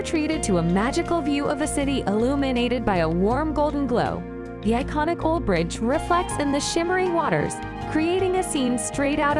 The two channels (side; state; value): both; identical; correlation 1.00